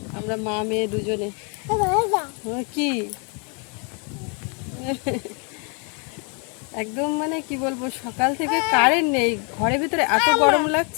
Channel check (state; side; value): quieter; right; 36.0 dB